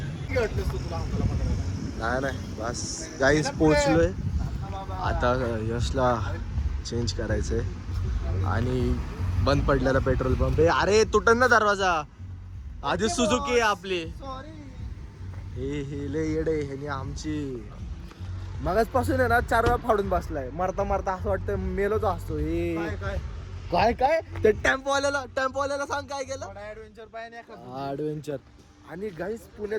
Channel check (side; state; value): both; identical; correlation 1.00